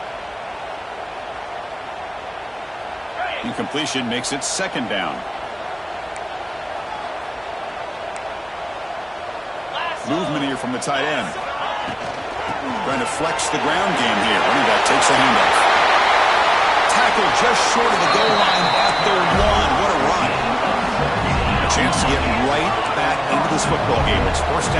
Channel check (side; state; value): both; identical; correlation 1.00